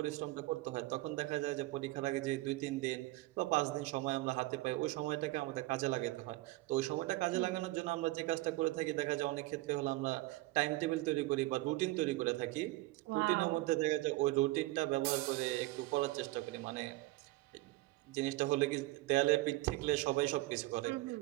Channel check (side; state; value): left; quieter; 19.5 dB